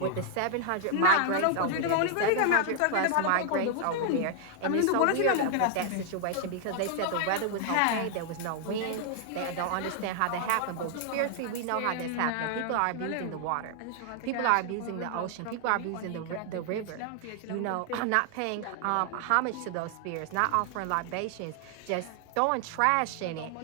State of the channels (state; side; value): different; both; correlation 0.00